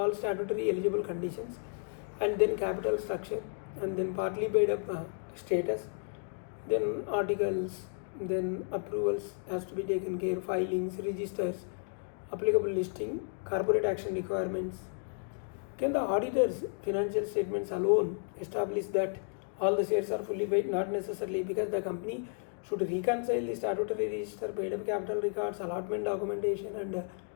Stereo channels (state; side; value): silent; right; 56 dB below the other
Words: statutory eligible conditions, and then capital structure, and then partly paid up status, then articles, then approvals has to be taken care, filings, registers, applicable listing, corporate action requirements. Can the auditor's financial statements alone establish that all the shares are fully paid? Not necessarily, because the company should reconcile the statutory register, paid up capital records, allotment documentation and